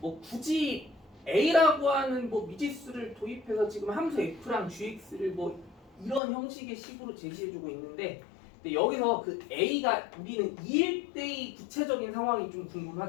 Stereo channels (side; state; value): right; drops out; at 6.2 s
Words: 굳이 A라고 하는 뭐 미지수를 도입해서 지금 함수 F랑 GX를 뭐 이런 형식의 식으로 제시해주고 있는데, 근데 여기서 그 A가 우리는 2일 때의 구체적인 상황이 좀